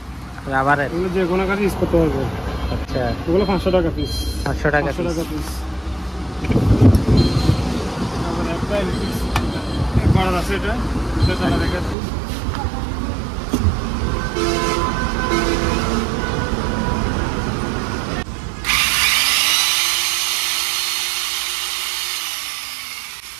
রাবারের। এগুলো যে কোনো কাজে ইউজ করতে পারবে। আচ্ছা, এগুলো 500 টাকা পিস। 500 টাকা 500 টাকা পিস। তারপর একটা ইলেকট্রিক করার আছে, এটা চালা দেখাচ্ছি।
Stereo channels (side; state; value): left; drops out; at 12.0 s